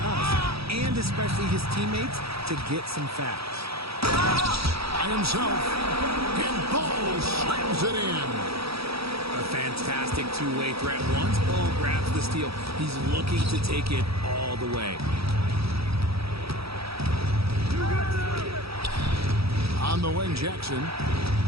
and especially his teammates, to get some facts. By himself, and Ball slams it in. A fantastic two-way threat. Once Ball grabs the steal, he's looking to take it all the way. On the wing, Jackson.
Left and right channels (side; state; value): left; late; 0.77 ms